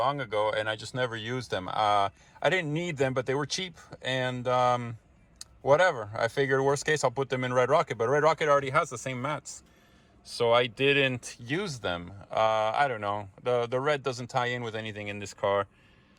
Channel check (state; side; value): identical; both; correlation 1.00